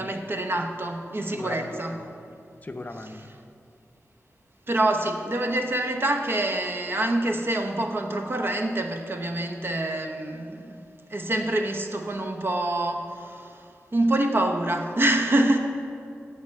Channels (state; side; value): normal; both; correlation 0.76